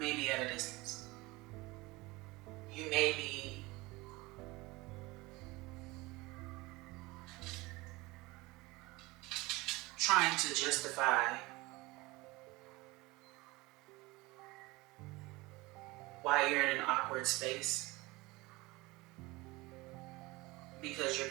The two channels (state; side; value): quieter; left; 22.4 dB